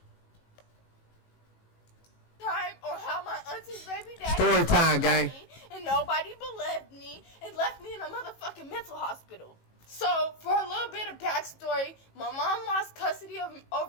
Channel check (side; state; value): right; late; 18 ms